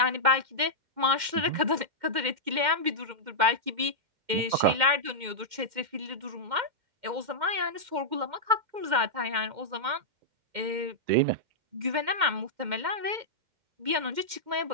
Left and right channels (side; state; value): left; late; 2.1 ms